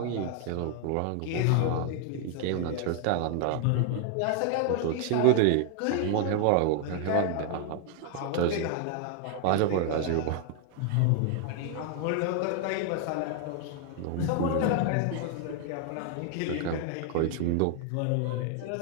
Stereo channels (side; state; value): both; different; correlation 0.00